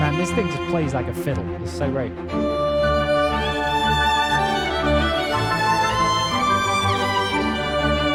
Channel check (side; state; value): both; identical; correlation 1.00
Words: Man, this thing just plays like a fiddle. It's so great.